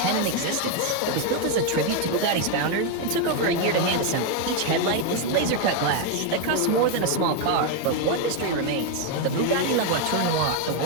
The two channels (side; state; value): both; different; correlation 0.02